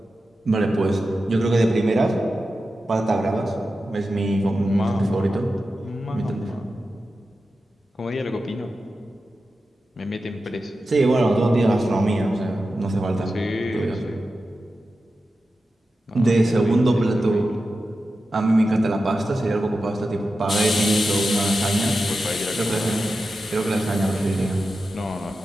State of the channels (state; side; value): normal; both; correlation 0.92